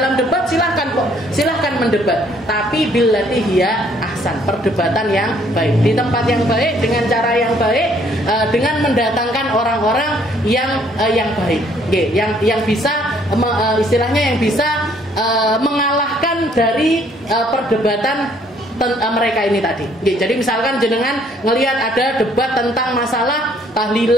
debat, silahkan mendebat, tapi billati hiya ahsan, perdebatan yang baik, di tempat yang baik, dengan cara yang baik, dengan mendatangkan orang-orang yang baik, yang bisa istilahnya yang bisa mengalahkan dari perdebatan mereka ini tadi. Jadi misalkan jenengan ngelihat ada debat tentang masalah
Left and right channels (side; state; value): both; normal; correlation 0.63